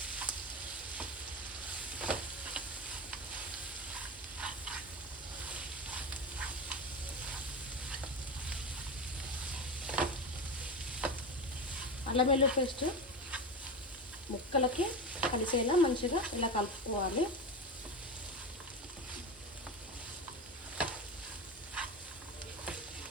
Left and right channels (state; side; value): normal; both; correlation 0.22